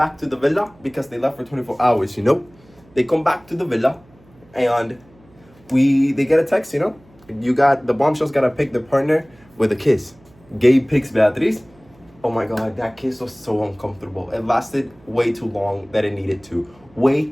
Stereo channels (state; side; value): noise; right; hum, 28 dB below the sound